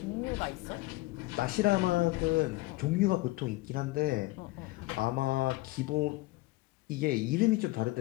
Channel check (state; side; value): quieter; right; 20.5 dB